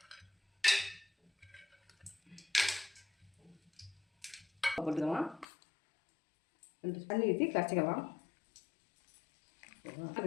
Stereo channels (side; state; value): right; drops out; at 5.5 s